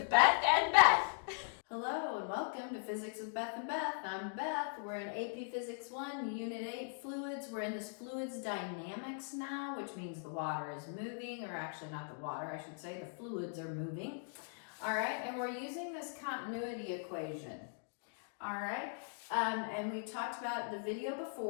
Beth and Beth. Hello and welcome to Physics with Beth and Beth. I'm Beth. We're in AP Physics 1, Unit 8, Fluids. We're in this fluids dynamics now, which means the water is moving, or actually not the water, I should say, the fluids are moving. All right, and we're using this continuity equation. All right, and we talked about the video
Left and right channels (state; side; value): silent; right; digital silence